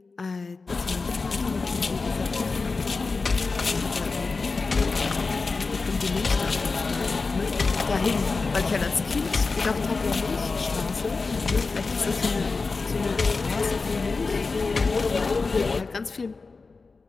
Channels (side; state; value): right; quieter; 4.1 dB